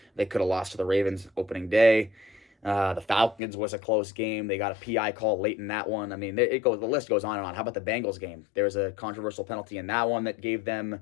They could have lost to the Ravens opening day. The Falcons was a close game. They got a PI call late in that one. I mean, the list goes on and on. How about the Bengals game? There was a controversial penalty in that one that gave them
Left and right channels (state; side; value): drops out; right; at 3.4 s